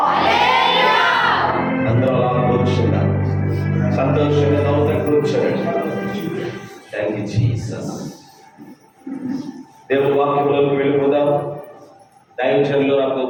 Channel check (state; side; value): identical; both; correlation 1.00